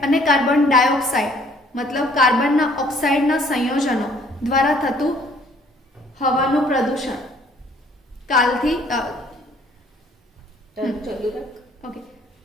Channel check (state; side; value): normal; both; correlation 0.59